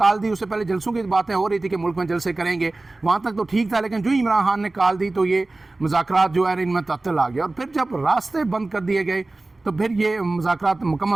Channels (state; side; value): quieter; left; 3.1 dB